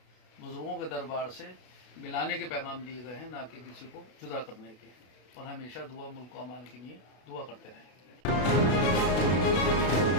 बुज़ुर्गों के दरबार से मिलाने के पैगाम दिए गए हैं, ना कि किसी को जुदा करने के। और हमेशा दुआ मुल्क को अमान के लिए दुआ करते रहें।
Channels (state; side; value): late; right; 32 ms